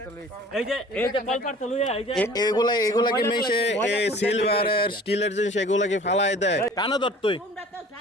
এগুলা কি মেশে সিলভারের স্টিলের জিনিস এগুলা কি ফালাই দেয়? কানা ধর তুই,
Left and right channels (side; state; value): both; normal; correlation 0.47